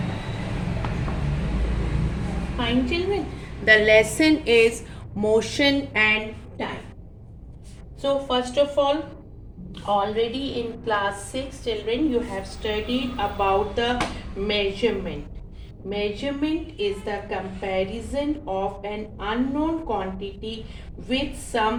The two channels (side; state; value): both; identical; correlation 1.00